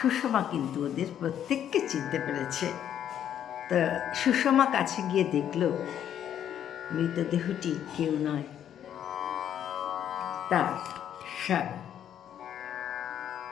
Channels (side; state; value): right; quieter; 9.9 dB